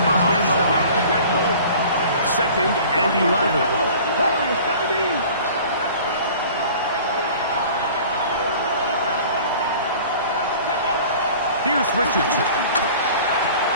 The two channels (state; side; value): inverted; both; correlation -0.45